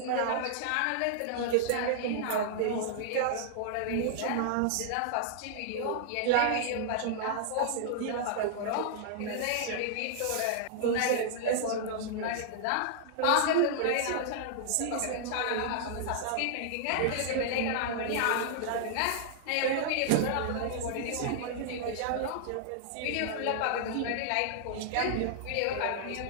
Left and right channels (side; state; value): both; different; correlation -0.01